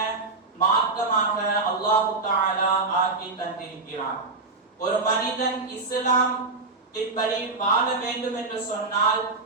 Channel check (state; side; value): quieter; left; 3.8 dB